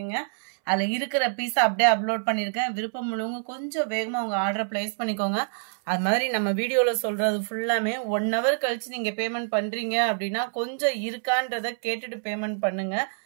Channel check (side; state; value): left; silent; 61 dB below the other